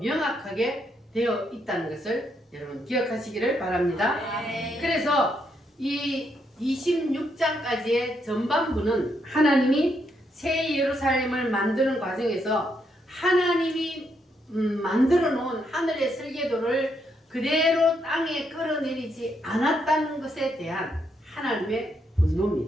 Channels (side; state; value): both; normal; correlation 0.77